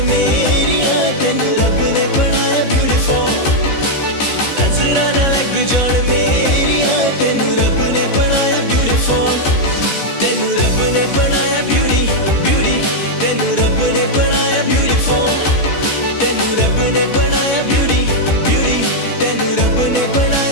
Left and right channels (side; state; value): right; late; 14 ms